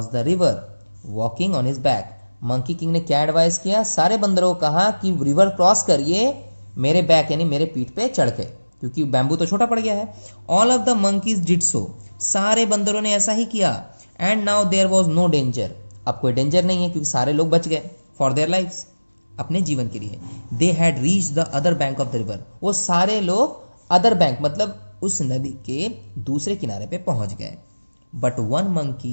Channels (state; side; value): inverted; both; correlation -1.00